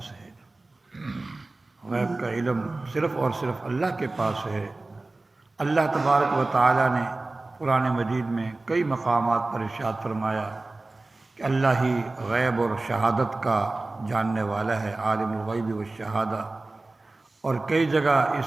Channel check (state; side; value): quieter; left; 3.1 dB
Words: ہے۔ غیب کا علم صرف اور صرف اللہ کے پاس ہے۔ اللہ تبارک و تعالی نے قرآن مجید میں کئی مقامات پر ارشاد فرمایا کہ اللہ ہی غیب اور شہادت کا جاننے والا ہے، عالم الغیب والشہادہ، اور کئی جگہ اس